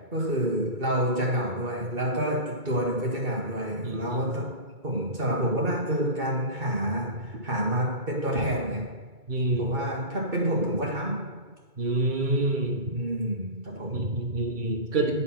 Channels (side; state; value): left; late; 2.3 ms